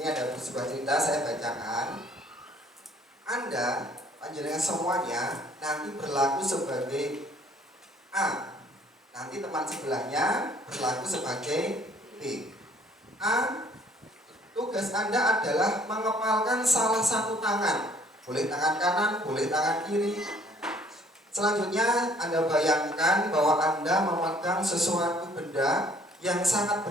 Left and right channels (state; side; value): normal; both; correlation 0.59